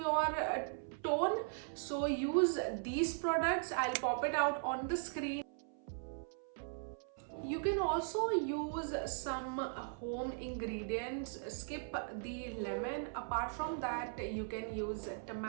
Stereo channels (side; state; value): left; silent; 52 dB below the other